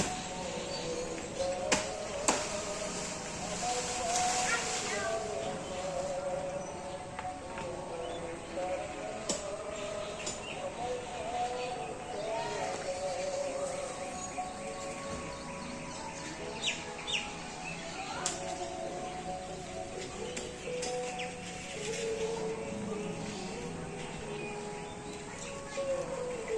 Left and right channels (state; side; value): identical; both; correlation 1.00